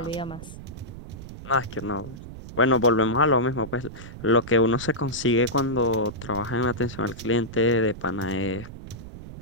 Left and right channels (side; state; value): right; noise; rumble, 13 dB below the sound